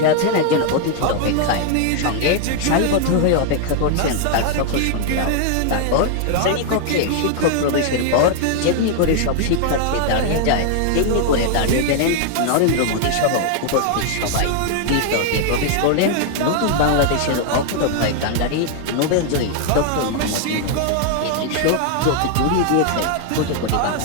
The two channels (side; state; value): both; different; correlation 0.00